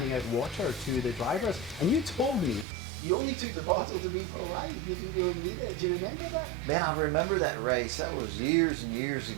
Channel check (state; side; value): drops out; left; at 2.7 s